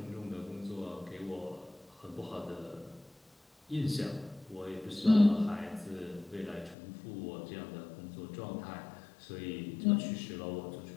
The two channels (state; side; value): drops out; right; at 6.8 s